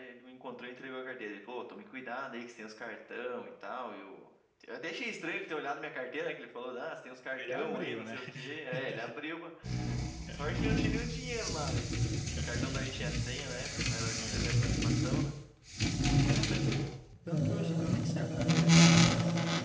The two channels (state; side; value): identical; both; correlation 1.00